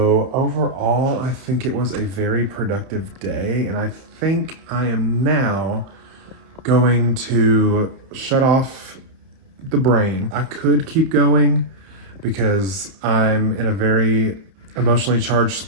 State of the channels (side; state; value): left; late; 30 ms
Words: overall, I think it was a very productive day. And I think I am now going to shut off the brain. I could keep going because I'm in a very emotionally charged